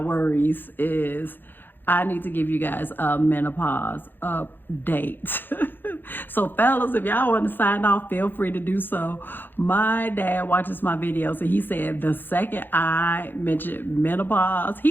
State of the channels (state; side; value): late; right; 0.095 ms